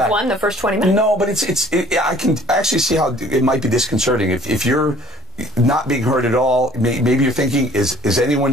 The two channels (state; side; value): normal; both; correlation 0.54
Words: won the first 20 minutes. No, but I can actually see how it might be disconcerting if you're not being heard at all. Maybe you're thinking, is